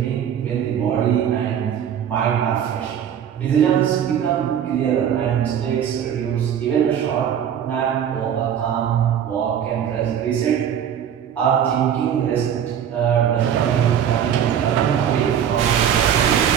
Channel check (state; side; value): quieter; left; 9.0 dB